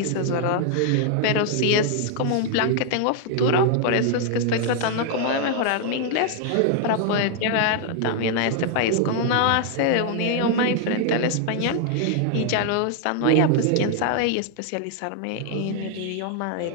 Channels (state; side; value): different; both; correlation 0.00